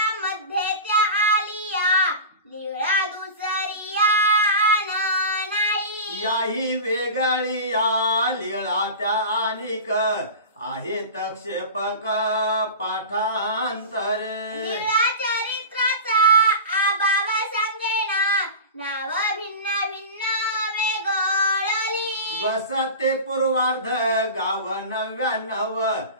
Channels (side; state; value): both; inverted; correlation -0.31